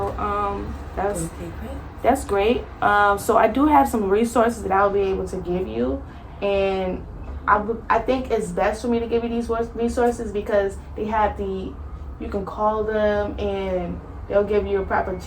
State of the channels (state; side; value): identical; both; correlation 1.00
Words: that's great. So I do have some resources that I'll be able to give you, and I think it's best for me to give you these resources because they have you can call them and they'll give you a proper